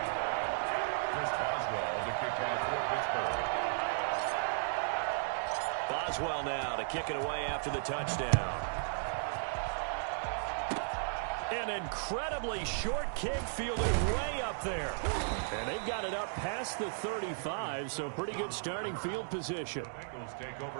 Chris Boswell to kick off for Pittsburgh. Boswell now to kick it away after the touchdown. An incredibly short kick fielded way up there. And they've got it up past the 35, so pretty good starting field position. Bengals take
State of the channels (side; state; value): left; silent; digital silence